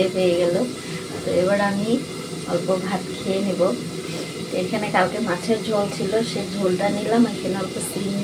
পেয়ে গেল। তো এবার আমি অল্প ভাত খেয়ে নেব। এখানে কালকে মাছের ঝোল ছিল, সেই ঝোলটা নিলাম। এখানে অল্প সিম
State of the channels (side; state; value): both; identical; correlation 1.00